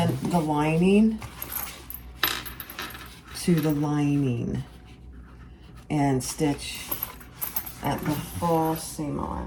the lining to the lining and stitch at the full seam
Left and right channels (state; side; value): identical; both; correlation 1.00